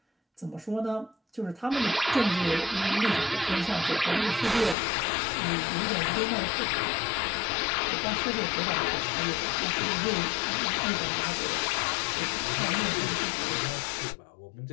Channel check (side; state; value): right; drops out; at 4.8 s